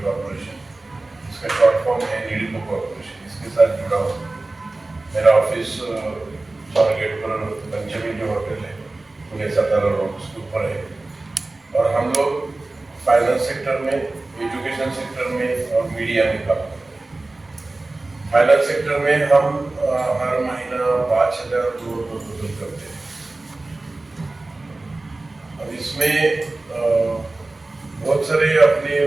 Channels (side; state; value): left; quieter; 3.1 dB